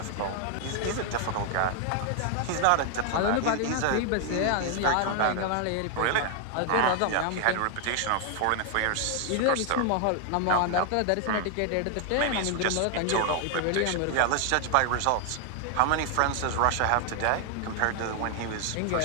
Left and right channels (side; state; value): both; different; correlation 0.00